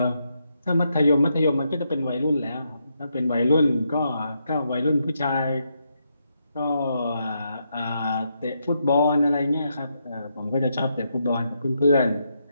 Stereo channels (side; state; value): both; inverted; correlation -0.80